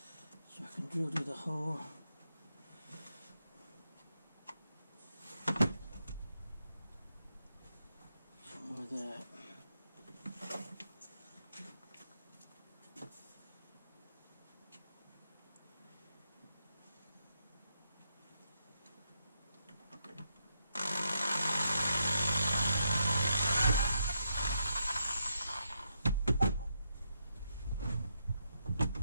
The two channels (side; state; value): both; inverted; correlation -0.81